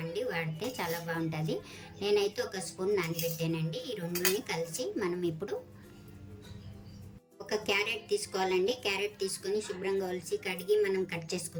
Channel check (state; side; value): identical; both; correlation 1.00